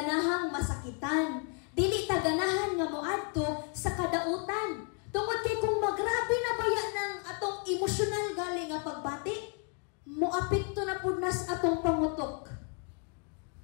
masakitan, dili ta ganahan nga moadto sa kadautan. Tungod kay kung magrabe na baya ng atong emosyonal galing nga pagbati, moapekto na pud nas atong pangutok.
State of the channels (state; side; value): quieter; right; 38.1 dB